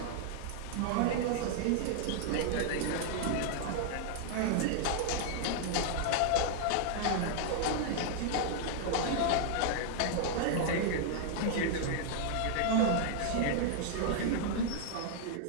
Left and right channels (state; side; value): different; both; correlation -0.01